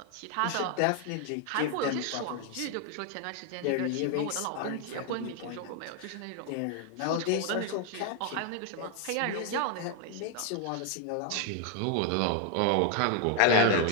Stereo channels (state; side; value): different; both; correlation 0.00